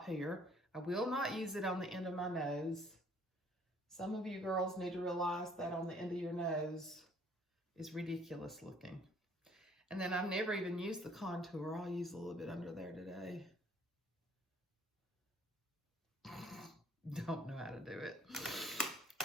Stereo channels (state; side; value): normal; both; correlation 0.59